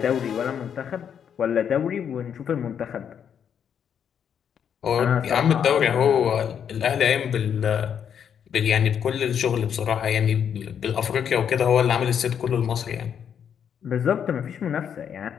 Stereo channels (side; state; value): right; quieter; 8.2 dB